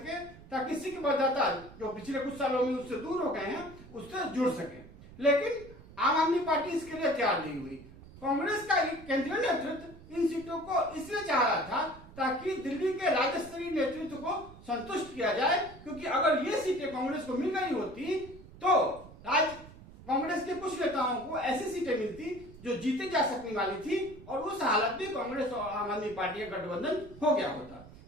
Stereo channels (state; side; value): noise; right; rumble, 19 dB below the sound